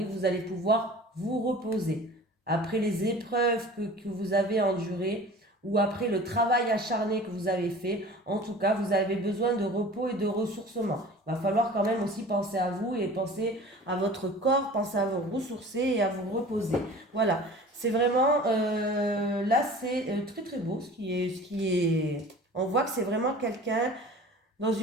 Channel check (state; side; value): normal; both; correlation 0.42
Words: vous allez pouvoir vous reposer. Après les épreuves que vous avez endurées, ou après le travail acharné que vous avez fait, en tout cas, vous avez besoin de repos et de ressourcement. Il va falloir quand même aussi penser à vous et penser à votre corps, penser à vous ressourcer et à vous reposer. Voilà, c'est vraiment, là c'est très très beau ce qui est, on voit que c'est vraiment quelqu'un dans